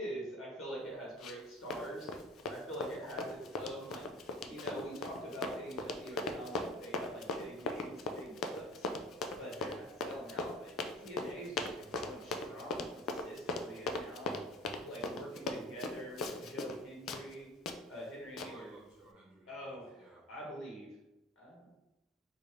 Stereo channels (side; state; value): both; normal; correlation 0.40